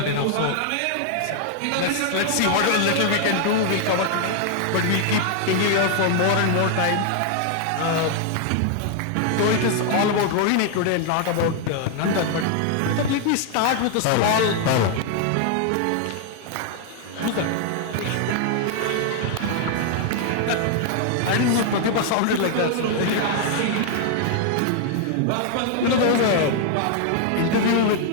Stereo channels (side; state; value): both; different; correlation 0.00